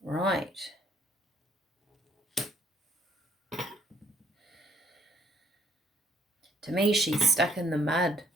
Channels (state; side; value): normal; both; correlation 0.66